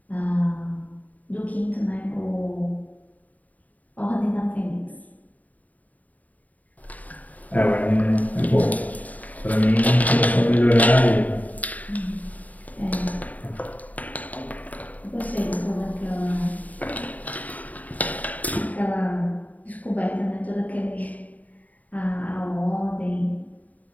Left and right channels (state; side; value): late; right; 0.074 ms